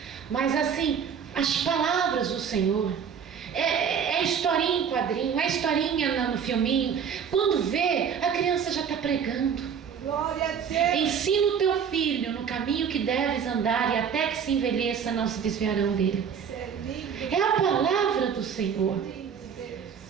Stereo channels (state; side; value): quieter; left; 7.3 dB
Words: Mas assim, as palavras do Senhor. É historinha em quadrinho, é historinha no filminho. Quando vê, a criança já está pregando. Glória a Deus. Ensina o teu filho no caminho que deves andar, e até que se envelheça não se desviarão dele. Isso é lindo. É a palavra do Senhor.